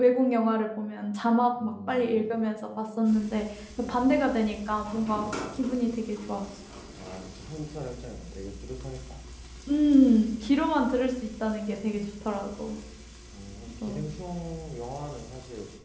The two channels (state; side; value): identical; both; correlation 1.00